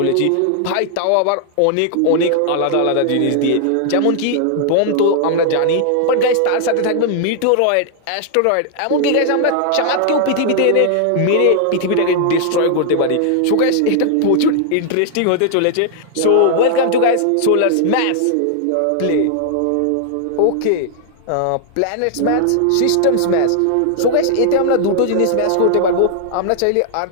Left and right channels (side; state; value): both; different; correlation 0.00